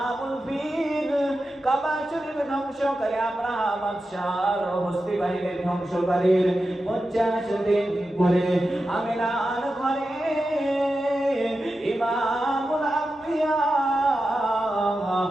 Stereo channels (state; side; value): normal; both; correlation 0.91